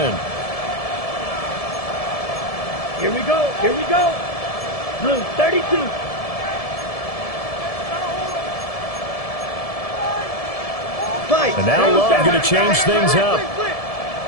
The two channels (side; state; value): right; late; 1.7 ms